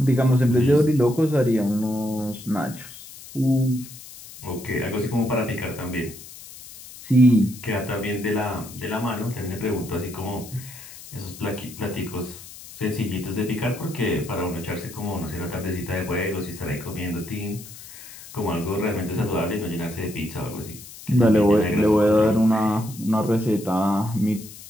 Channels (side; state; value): left; noise; hiss, 16 dB below the sound